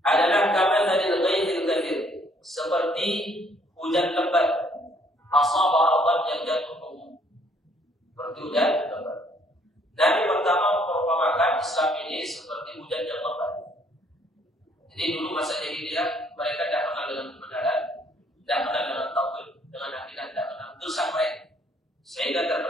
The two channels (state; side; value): normal; both; correlation 0.64